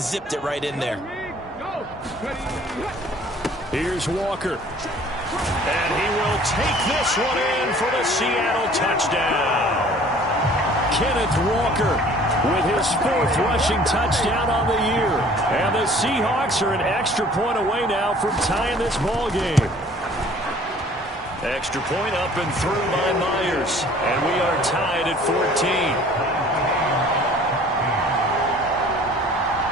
zipped it right in there. Here's Walker. And he will take this one in for the Seattle touchdown. Kenneth Walker with his 4th rushing touchdown on the year. And the Seahawks are an extra point away now from tying this ball game. Extra point up and through by Myers. And we are tied at 14.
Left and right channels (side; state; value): both; normal; correlation 0.52